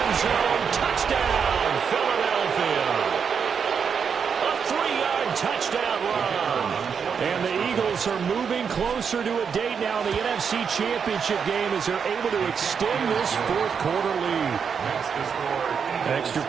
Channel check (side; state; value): left; quieter; 6.6 dB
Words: zone. Touchdown, Philadelphia. A 3-yard touchdown run. And the Eagles are moving closer to a date now in the NFC Championship game as they're able to extend this 4th quarter lead. Extra